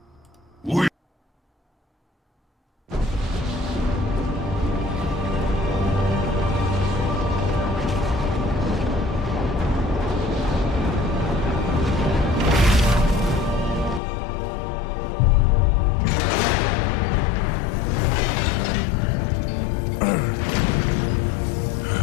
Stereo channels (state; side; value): drops out; right; at 14.0 s